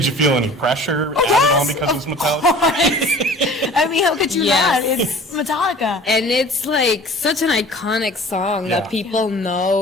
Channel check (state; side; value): normal; both; correlation 0.45